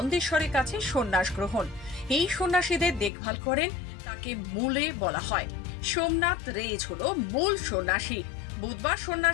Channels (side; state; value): right; drops out; at 3.1 s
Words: কাছে সন্ন্যাস গ্রহণ। এই সন্ন্যাসীদের দেখভাল করেন তাকে মূলে বলা হয়। সোমনাথ রেজ হলো মূল সন্ন্যাসী। বুধবার